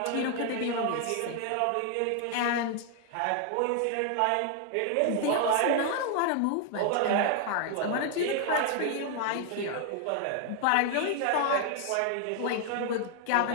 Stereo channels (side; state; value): both; different; correlation 0.00